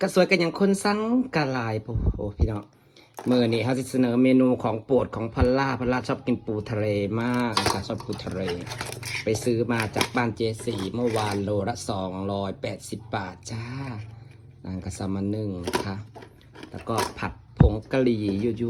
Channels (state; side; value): identical; both; correlation 1.00